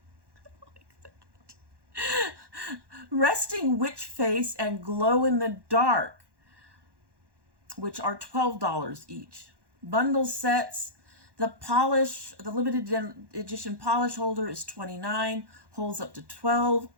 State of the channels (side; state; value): left; late; 1.1 ms